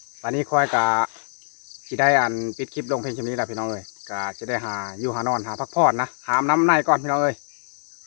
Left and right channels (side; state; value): right; silent; digital silence